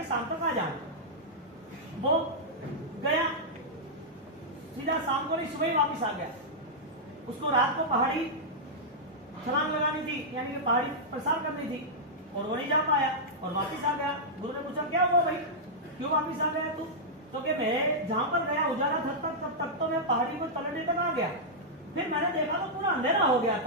शाम तक आ जाना। वो गया, सीधा शाम को नहीं, सुबह ही वापिस आ गया। उसको रात को पहाड़ी छलांग लगानी थी, यानी कि पहाड़ी प्रसार करनी थी, और वो नहीं जा पाया और वापिस आ गया। गुरु ने पूछा क्या हुआ भाई, क्यों वापिस आ गया तू? तो कि मैं जहां पर गया उजाला था तब तो मैं पहाड़ी को तलने तक आ गया, फिर मैंने देखा तो पूरा अंधेरा हो गया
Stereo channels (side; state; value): both; normal; correlation -0.09